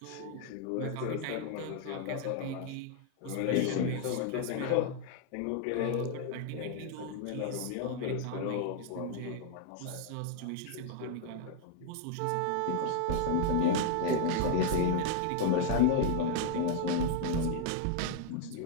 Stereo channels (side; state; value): both; different; correlation 0.00